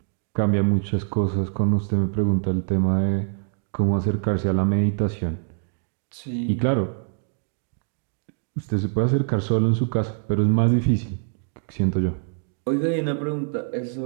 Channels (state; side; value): silent; left; 62 dB below the other